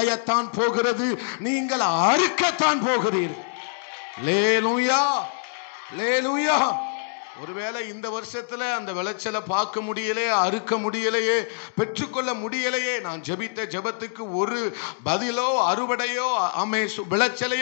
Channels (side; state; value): right; silent; digital silence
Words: போகிறது. நீங்கள் அறுக்கத்தான் போகிறீர்கள். அல்லேலூயா. அல்லேலூயா. ஒருவேளை இந்த வருஷத்துல அந்த விளைச்சலை பார்க்க முடியலையே, அறுக்க முடியலையே, பெற்றுக்கொள்ள முடியலையே, நான் ஜெபித்த ஜெபத்துக்கு ஒரு பதிலோ அறுவடையோ